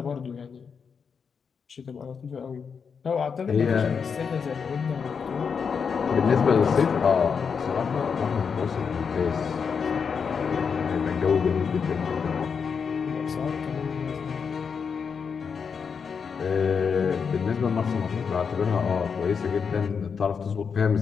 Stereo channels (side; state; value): right; quieter; 6.1 dB